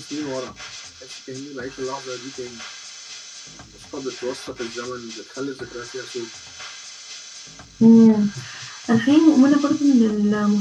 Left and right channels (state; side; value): identical; both; correlation 1.00